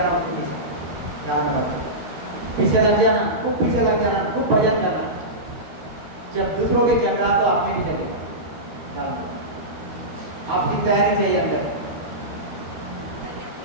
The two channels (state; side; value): late; left; 13 ms